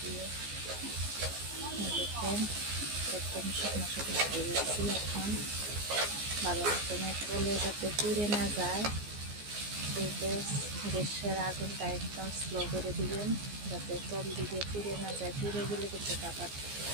দেখেন একদম শুকনো দিয়েছি। এখন ভালো মতন কলে যাতে পুড়ে না যায়, এই গ্যাসের আগুনটা একদম স্লো করে দিবেন, যাতে তল দিকে পুড়ে না যায়। পুড়ে গেলে কিন্তু আবার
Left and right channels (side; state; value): left; late; 14 ms